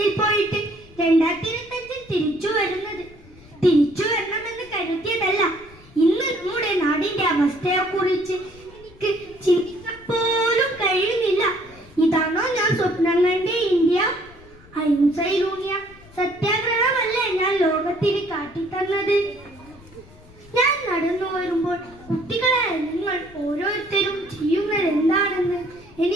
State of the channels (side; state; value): left; noise; rumble, 23 dB below the sound